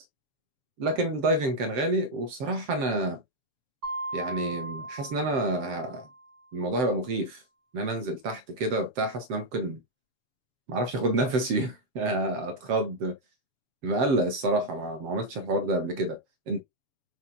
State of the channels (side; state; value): left; late; 7.7 ms